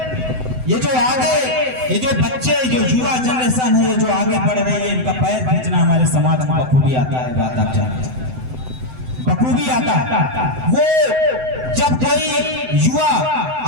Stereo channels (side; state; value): left; late; 7.9 ms